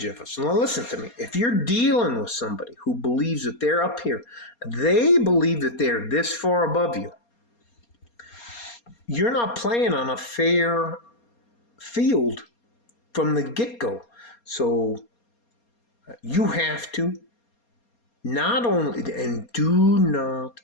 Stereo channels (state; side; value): late; right; 4.3 ms